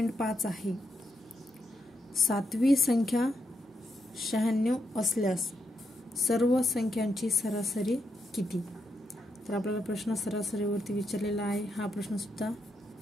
आहे। 7वी संख्या 96 असल्यास सर्व संख्यांची सरासरी किती। तर आपल्याला प्रश्न सरासरीवरती विचारलेला आहे। हा प्रश्न सुद्धा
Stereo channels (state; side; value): normal; both; correlation 0.82